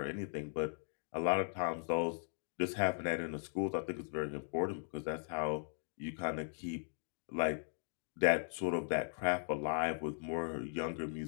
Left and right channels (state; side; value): silent; right; digital silence